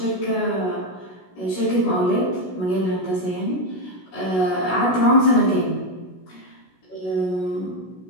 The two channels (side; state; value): right; late; 16 ms